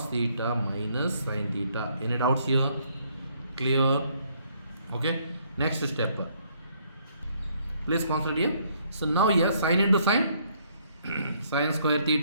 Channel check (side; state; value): both; inverted; correlation -0.67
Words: theta minus sin theta. Any doubts here? Clear? Okay. Next step. Please consider here. So now here sin into sin, sin square